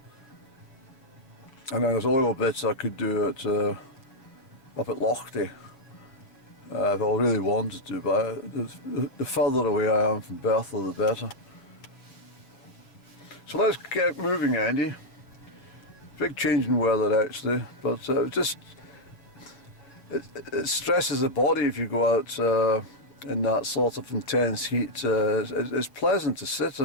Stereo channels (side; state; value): right; late; 7.2 ms